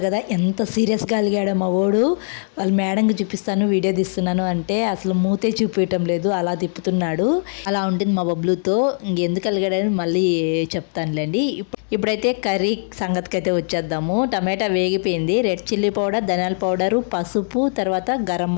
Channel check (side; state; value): right; silent; 65 dB below the other